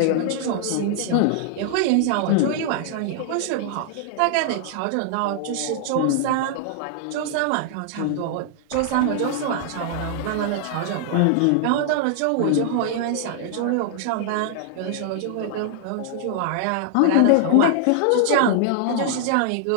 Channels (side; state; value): both; different; correlation -0.01